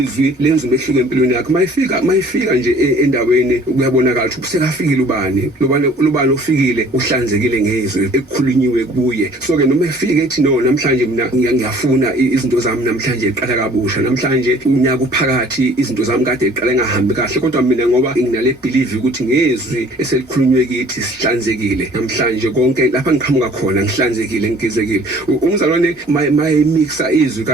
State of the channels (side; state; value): both; normal; correlation 0.53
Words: lenza umehluko empilweni yakho. Mayifika nje endaweni kuyabonakala ukuthi usekafikile ubani, lobani ofikile uhlanzekile ngezwi elikhulunyiwe kuye. So ke noma efike ethi no namhlanje mina ngiyafuna izinto zami namhlanje iqala kabusha, namhlanje unyaka uphakathi izinto zami kade iqala ngahambi kahle, kodwa mina ngoba nginale believe ukuthi ngezwi eselikhulunywe kithi sihlanzekile namhlanje konke lapha ngiqhamuka khona ngihlanzekile ngigezekile. Umzalwane mayimixa izwi